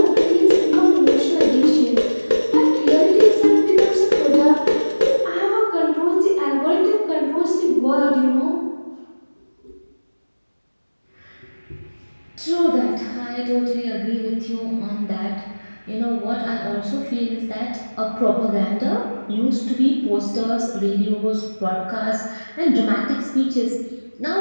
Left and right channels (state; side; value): inverted; both; correlation -1.00